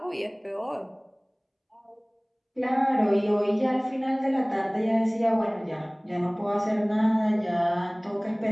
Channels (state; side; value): identical; both; correlation 1.00